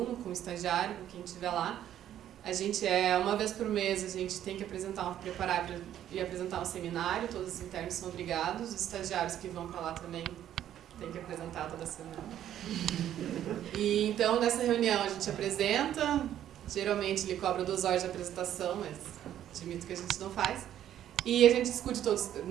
com o estagiário, com quem estiver lá. A gente uma vez por mês, a gente tem que preparar e apresentar um seminário, todos os internos são obrigados, os estagiários que vão para lá também têm que apresentar toda semana. E então, nessa reunião a gente apresenta, geralmente ele cobra 2 horas de apresentação, mas admito que a gente não faz. E a gente discute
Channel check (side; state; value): left; quieter; 11.2 dB